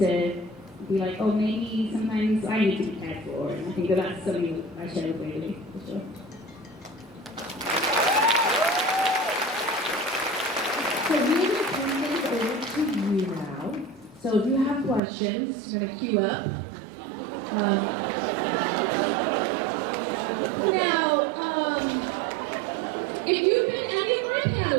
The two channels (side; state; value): left; drops out; at 15.0 s